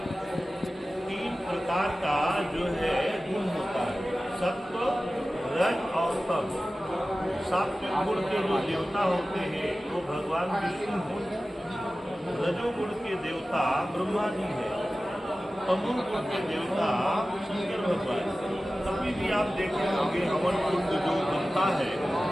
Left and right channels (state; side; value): normal; both; correlation 0.96